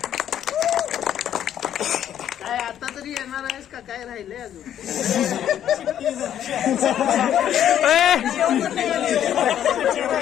काय आता तरी येणार आहेस का काय राहिलंय अजून.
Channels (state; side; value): quieter; right; 10.4 dB